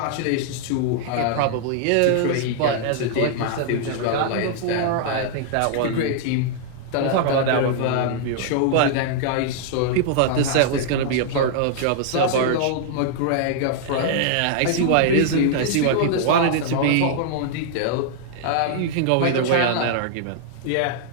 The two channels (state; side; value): different; both; correlation -0.01